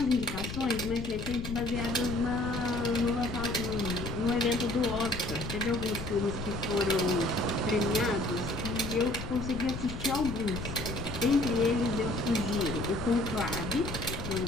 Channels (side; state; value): left; noise; rumble, 7 dB below the sound